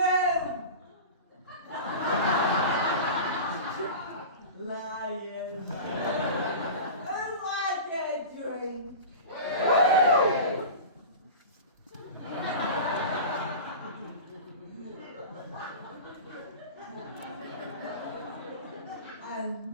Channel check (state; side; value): inverted; both; correlation -0.32